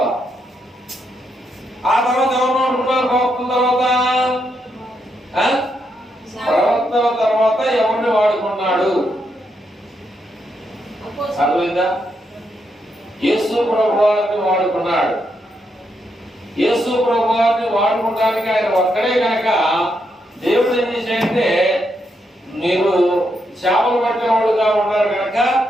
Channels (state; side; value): normal; both; correlation 0.80